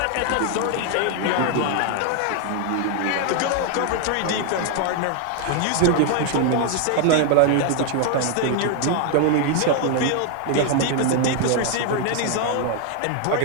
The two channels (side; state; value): both; different; correlation 0.00